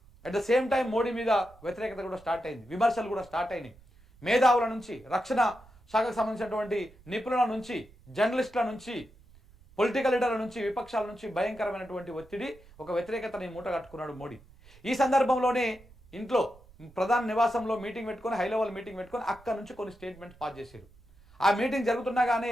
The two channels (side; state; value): right; noise; rumble, 25 dB below the sound